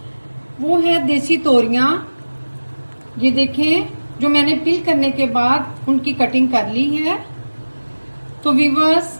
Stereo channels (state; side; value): inverted; both; correlation -1.00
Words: वो है देसी तोरियां। ये देखें, जो मैंने पील करने के बाद उनकी कटिंग कर ली है। तो व्यूअर्स,